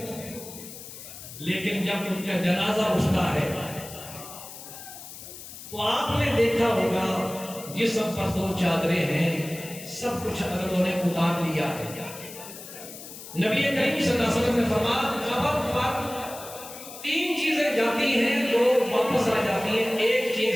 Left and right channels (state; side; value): noise; left; hiss, 14 dB below the sound